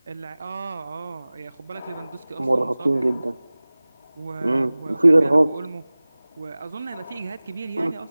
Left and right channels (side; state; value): both; inverted; correlation -0.99